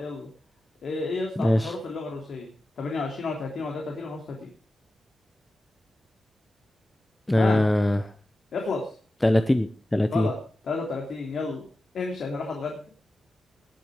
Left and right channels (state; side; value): normal; both; correlation 0.94